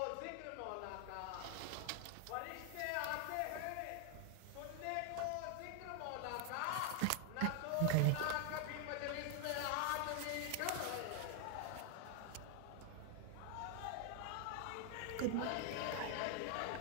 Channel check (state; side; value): different; both; correlation 0.00